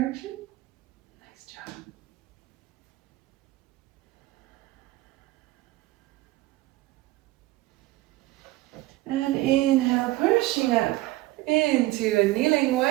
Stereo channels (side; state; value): left; quieter; 18.4 dB